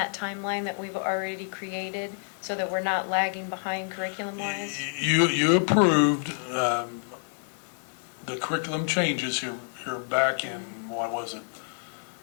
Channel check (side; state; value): right; silent; digital silence